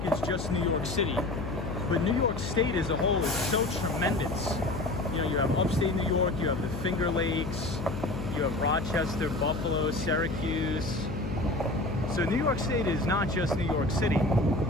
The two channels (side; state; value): left; noise; hum, 6 dB below the sound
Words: is just New York City, but New York State as a whole is so tremendous. You know, you have upstate New York, you have the Finger Lakes, you have Rochester, Buffalo, Syracuse. So New York State is not just New York City.